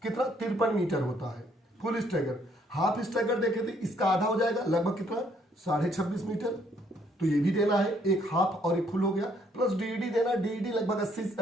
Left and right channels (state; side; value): normal; both; correlation 0.67